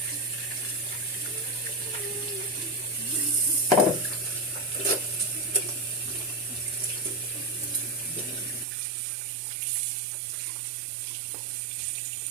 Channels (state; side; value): drops out; left; at 8.7 s